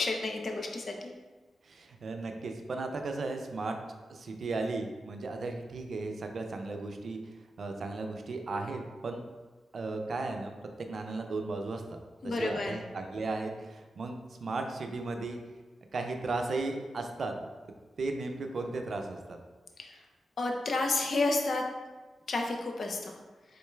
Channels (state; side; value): normal; both; correlation 0.86